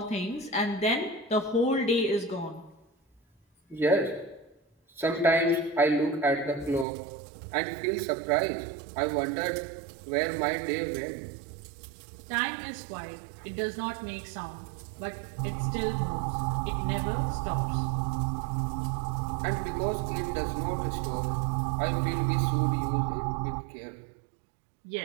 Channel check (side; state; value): left; drops out; at 6.9 s